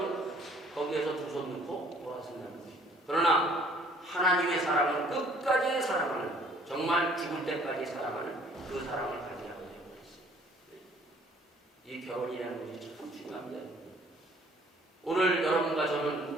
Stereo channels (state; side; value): normal; both; correlation 0.57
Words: 거기에서 두 손 넣고 돌아선다는 것입니다. 그러나 하나님의 사랑은 끝까지 사랑하는 정말 죽을 때까지 사랑하는 그 사랑을 가지라고 되어 있어요. 이 결혼이라는 것이 참 중요합니다. 오늘 여러분과